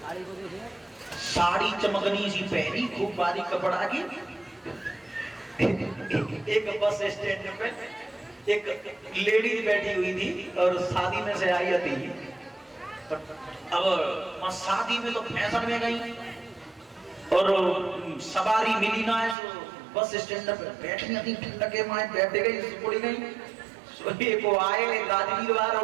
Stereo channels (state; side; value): drops out; left; at 19.4 s